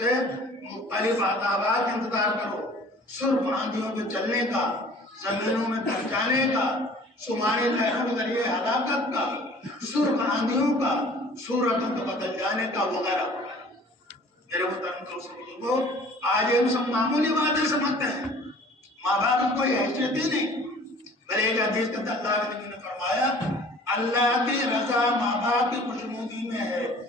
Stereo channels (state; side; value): normal; both; correlation 0.49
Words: مختلف عذابات انتظار کرو. سرخ آندھیوں کے چلنے کا، زمینوں میں دب جانے کا، سمانی لہروں کے ذریعے ہلاکت کا، سرخ آندھیوں کا، صورتوں کو بدل جانے کا وغیرہ. میرے محترم دوستوں، آج ہم سب معمولی باتیں سمجھتے ہیں، ماں باپ کی کوئی حیثیت ہی نہیں. بلے ایک حدیث کے اندر اللہ کے نبی نے فرمایا اللہ کی رضا ماں باپ کی خوشنودی میں ہے،